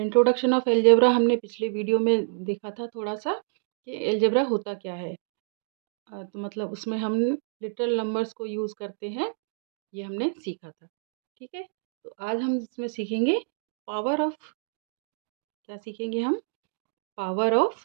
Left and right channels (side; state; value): left; silent; digital silence